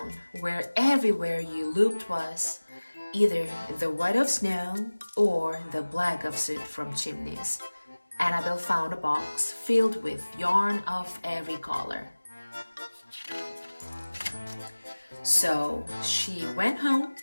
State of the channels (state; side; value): inverted; both; correlation -1.00